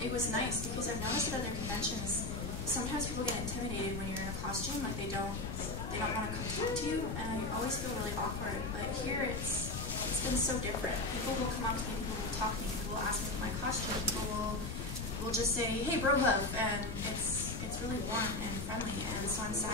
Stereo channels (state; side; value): noise; left; rumble, 5 dB below the sound